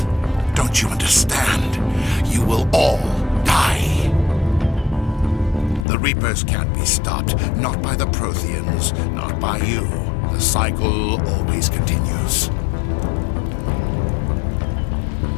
Don't you understand? You will all die. The Reapers can't be stopped. Not by the Protheans. Not by you. The cycle always continues.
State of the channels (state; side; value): drops out; right; at 5.9 s